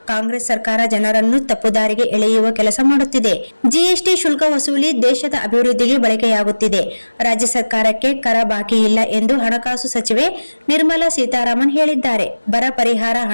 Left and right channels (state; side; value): inverted; both; correlation -1.00